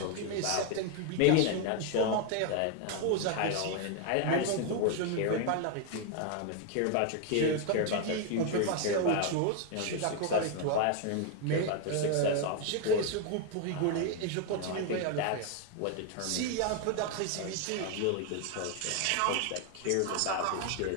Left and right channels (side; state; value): both; different; correlation 0.01